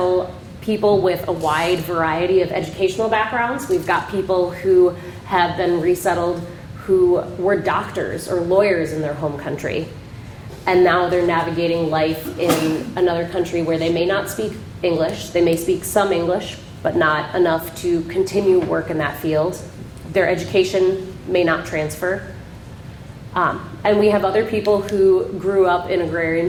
people with a wide variety of educational backgrounds. We've got people who have been resettled who were doctors or lawyers in their home country, and now they're navigating life in another country where they may not speak English. They may speak some English, but not enough to continue work in that field. Their education may not transfer. And we have other people who grew up in agrarian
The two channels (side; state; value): both; identical; correlation 1.00